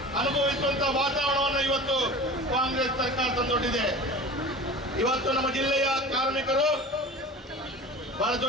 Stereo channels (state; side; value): normal; both; correlation 0.36